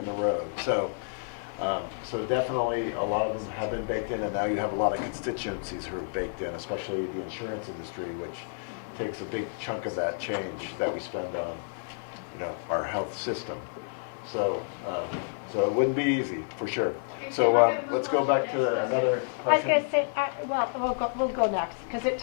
the road. So definitely a lot of them have been baked in, and now you have a lot of constituencies who are baked in, especially the insurance industry, which takes a big chunk of that change that we spend on, our health system. So it wouldn't be easy, for sure. So let's go back to another I was question. going to say, we'll go next, because it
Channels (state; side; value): silent; right; digital silence